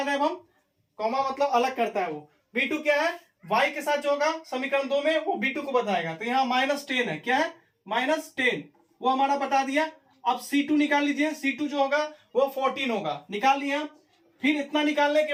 रहे हैं हम, कॉमा मतलब अलग करता है वो। B2 क्या है? y के साथ जो होगा समीकरण 2 में वो B2 को बताएगा, तो यहाँ -10 है। क्या है? -10, वो हमारा बता दिया। अब C2 निकाल लीजिए, C2 जो होगा वो 14 होगा, निकाल लिया। फिर इतना निकालने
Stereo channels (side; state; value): both; identical; correlation 1.00